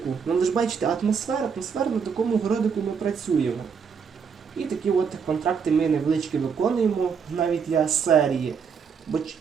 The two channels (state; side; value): quieter; left; 6.3 dB